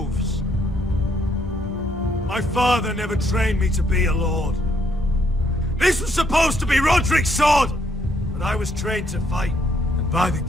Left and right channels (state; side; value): normal; both; correlation 0.71